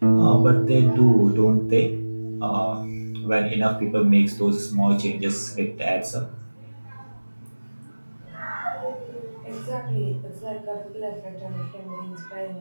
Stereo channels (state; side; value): inverted; both; correlation -1.00